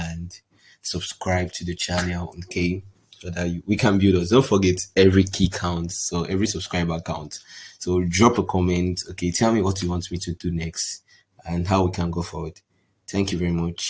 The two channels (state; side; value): identical; both; correlation 1.00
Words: subscribe to the channel, okay? So that we can build us. Don't forget every key counts, so every subscriber counts. So drop a comment, okay? Tell me what you want me to do next and how we can go forward. Thank you very